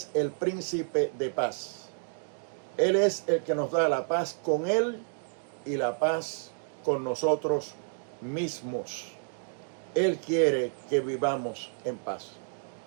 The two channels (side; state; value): left; silent; digital silence